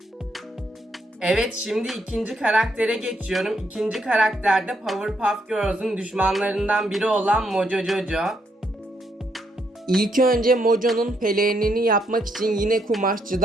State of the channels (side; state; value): both; normal; correlation 0.75